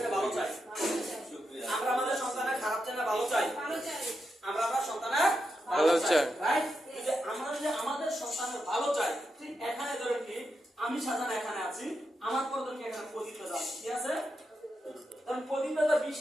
ভালো চাই, আমরা আমাদের সন্তানের খারাপ থেকে ভালো চাই, আমরা আমার সন্তানের ভালো চাই, রাইট? যে আমরা যদি আমাদের সন্তানের ভালো চাই, ঠিক এখানে ধরেন কি আমি সাজান এখানে আছি, আমার পর ধরেন কি এখানে প্রদীপ দাদা, ঠিক আছে? কারণ প্রদীপ দাদা 20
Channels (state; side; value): normal; both; correlation 0.86